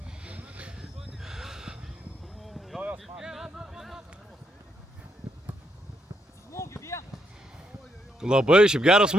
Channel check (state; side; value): normal; both; correlation 0.77